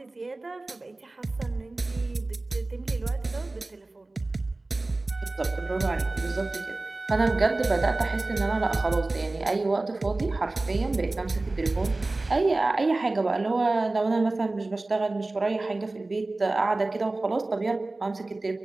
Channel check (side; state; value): left; quieter; 3.1 dB